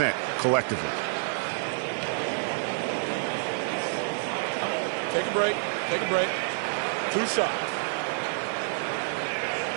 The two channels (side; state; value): left; silent; digital silence